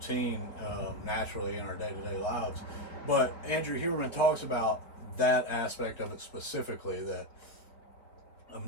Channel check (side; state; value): right; late; 4.4 ms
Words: naturally in our day-to-day lives. But Andrew Huberman talks about that aspect of it specifically, that of